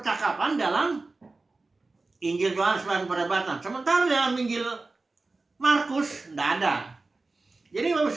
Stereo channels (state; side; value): quieter; left; 3.5 dB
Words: dalam Injil Yohanes dan perdebatan. Sementara dalam Injil Markus tidak ada. Jadi Bapak